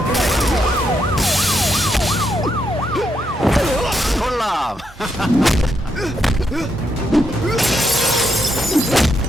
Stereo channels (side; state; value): both; normal; correlation 0.79